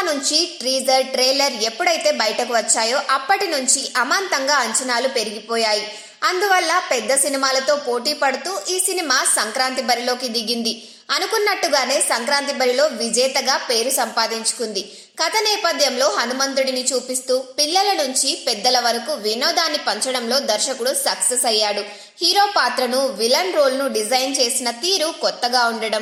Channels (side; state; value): both; identical; correlation 1.00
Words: నుంచి ట్రీజర్, ట్రైలర్ ఎప్పుడైతే బయటకు వచ్చాయో అప్పటి నుంచి అమాంతంగా అంచనాలు పెరిగిపోయాయి. అందువల్ల పెద్ద సినిమాలతో పోటీ పడుతూ ఈ సినిమా సంక్రాంతి బరిలోకి దిగింది. అనుకున్నట్టుగానే సంక్రాంతి బరిలో విజేతగా పేరు సంపాదించుకుంది. కథ నేపథ్యంలో హనుమంతుడిని చూపిస్తూ పిల్లల నుంచి పెద్దల వరకు వినోదాన్ని పంచడంలో దర్శకుడు సక్సెస్ అయ్యాడు. హీరో పాత్రను, విలన్ రోల్ను డిజైన్ చేసిన తీరు కొత్తగా